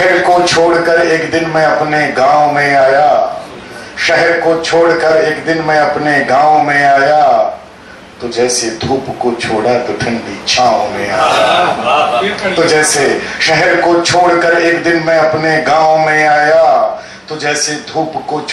को छोड़कर एक दिन मैं अपने गांव में आया, शहर को छोड़कर एक दिन मैं अपने गांव में आया, तो जैसे धूप को छोड़ा तो ठंडी छांव में आया। तो जैसे शहर को छोड़कर एक दिन मैं अपने गांव में आया, तो जैसे धूप को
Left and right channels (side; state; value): both; identical; correlation 1.00